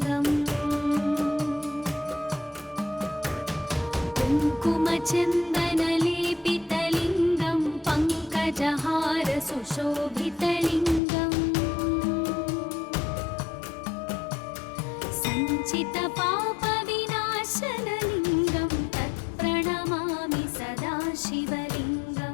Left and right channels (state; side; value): drops out; right; at 11.0 s